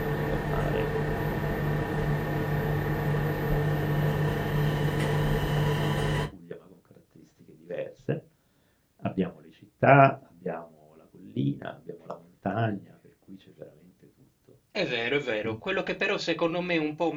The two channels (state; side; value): identical; both; correlation 1.00